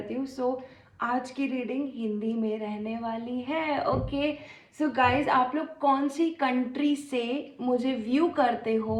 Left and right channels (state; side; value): identical; both; correlation 1.00